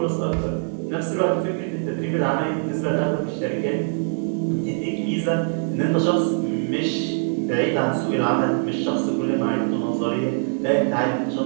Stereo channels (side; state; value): left; silent; digital silence